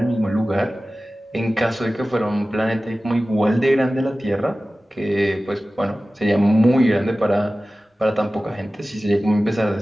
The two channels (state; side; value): normal; both; correlation 0.96